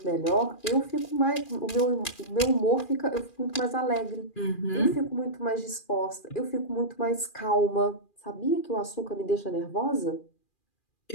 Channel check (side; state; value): right; late; 2.4 ms